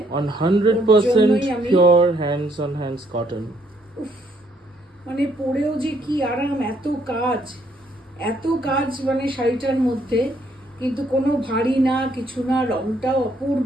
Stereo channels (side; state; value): both; normal; correlation 0.69